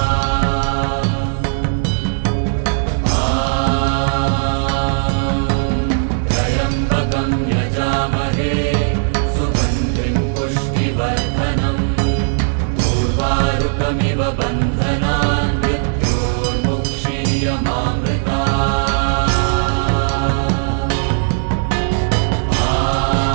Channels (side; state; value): left; silent; digital silence